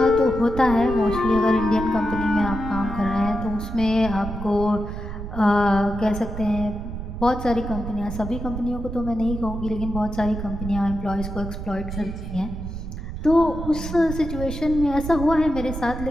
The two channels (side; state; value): right; noise; rumble, 7 dB below the sound